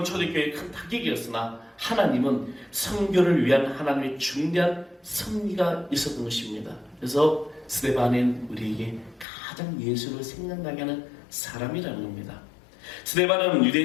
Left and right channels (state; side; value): drops out; right; at 9.2 s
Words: 초대교회의 큰 타격이었으나 하나님은 선교를 위한 하나님의 중대한 섭리가 있었던 것입니다. 그래서 스데반은 우리에게 가장 예수를 생각나게 하는 사람이라는 겁니다. 스데반은